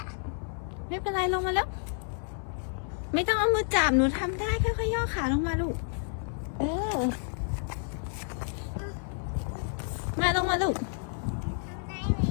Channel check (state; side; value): silent; right; 58 dB below the other